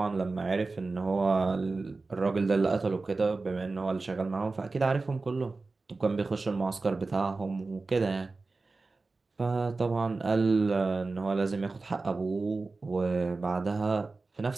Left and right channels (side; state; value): left; quieter; 3.7 dB